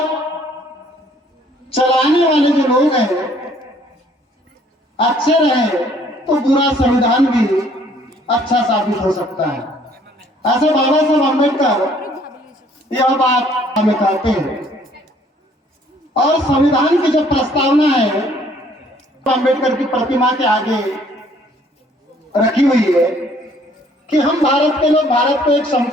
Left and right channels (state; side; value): normal; both; correlation 0.60